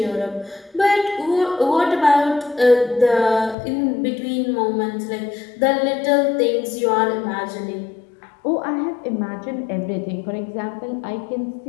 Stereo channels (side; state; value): right; drops out; at 3.6 s